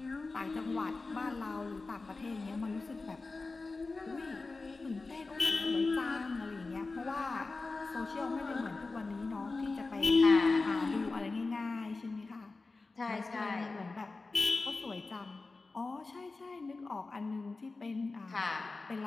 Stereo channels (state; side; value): quieter; right; 3.7 dB